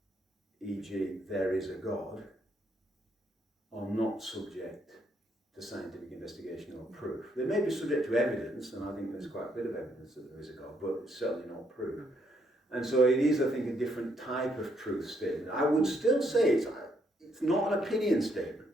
e.g. there is a God, are not subject to scientific investigation or proof. They may be subject to evidence, and I think there's quite a bit of evidence that there is a God, but it's certainly not proof. And so it is, I think, a different type of truth statement. I would still say it's not an opinion statement.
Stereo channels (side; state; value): both; normal; correlation 0.73